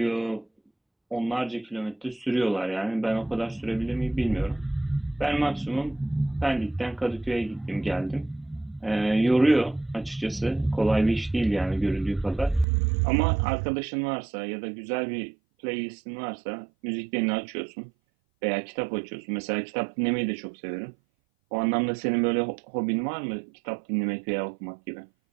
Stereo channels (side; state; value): left; drops out; at 12.7 s